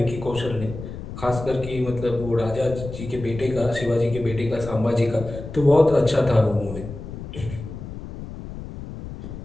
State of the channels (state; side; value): noise; left; rumble, 10 dB below the sound